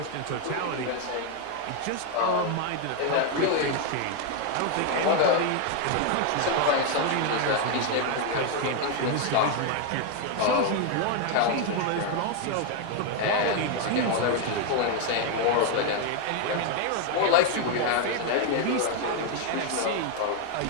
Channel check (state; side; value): different; both; correlation 0.01